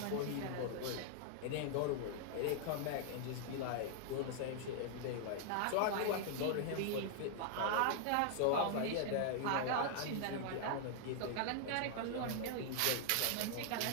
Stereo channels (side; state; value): both; different; correlation -0.01